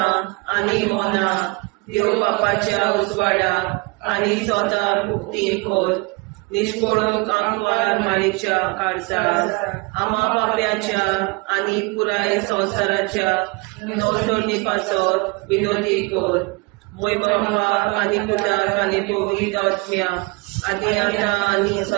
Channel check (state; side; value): quieter; left; 28.0 dB